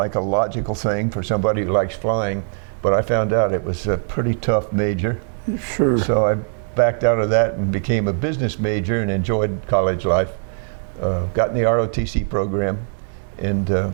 a logical thing for somebody who likes flying, but I found out it was a pretty tough major. Sure. So I backed out of that and became a business major and enjoyed college life. Got in the ROTC program and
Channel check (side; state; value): left; silent; digital silence